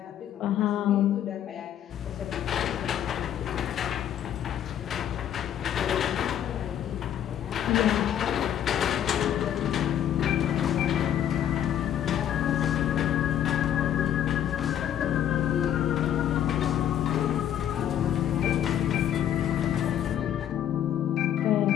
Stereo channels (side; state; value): right; quieter; 10.3 dB